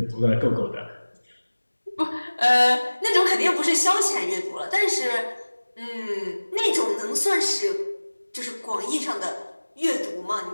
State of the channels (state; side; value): inverted; both; correlation -1.00